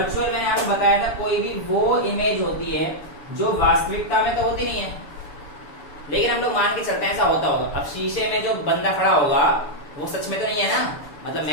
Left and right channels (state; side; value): late; right; 6.9 ms